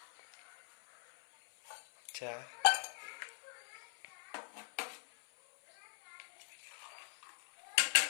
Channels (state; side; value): silent; right; 50 dB below the other